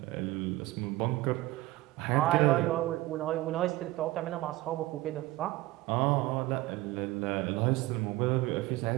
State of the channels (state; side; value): quieter; left; 18.3 dB